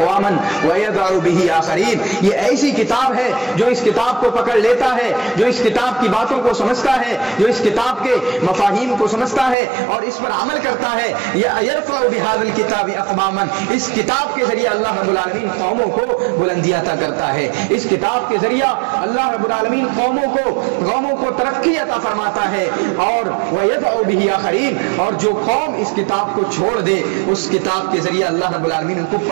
ویضع بہ آخرین، یہ ایسی کتاب ہے جو اس کتاب کو پکڑ لیتا ہے، جو اس کتاب کی باتوں کو سمجھتا ہے، جو اس کتاب کے مفاہیم کو سمجھتا ہے اور اس پر عمل کرتا ہے، یرفع بہذا الکتاب اقواما، اس کتاب کے ذریعے اللہ رب العالمین قوموں کو بلندی عطا کرتا ہے، اس کتاب کے ذریعہ اللہ رب العالمین قوموں کو ترقی عطا فرماتا ہے، اور وَيَدْعُ بِهِ آخَرِينَ، اور جو قوم اس کتاب کو چھوڑ دے اس کتاب کے ذریعے اللہ رب العالمین ان کو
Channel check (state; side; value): drops out; left; at 9.6 s